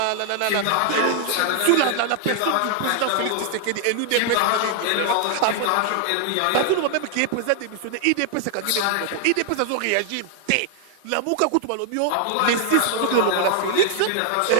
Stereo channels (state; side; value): different; both; correlation 0.00